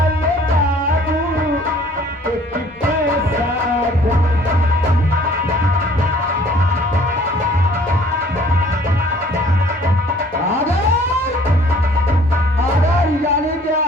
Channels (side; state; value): both; normal; correlation 0.55